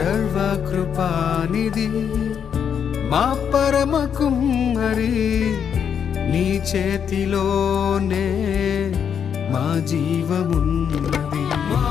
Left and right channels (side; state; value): right; quieter; 7.8 dB